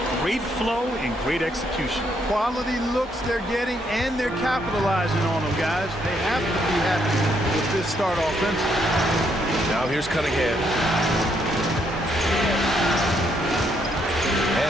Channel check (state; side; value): normal; both; correlation 0.73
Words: Great flow and great execution. Quality looks they're getting, and they're capitalizing on them, guys. They have to be happy with this start offensively. Now here's Cunningham.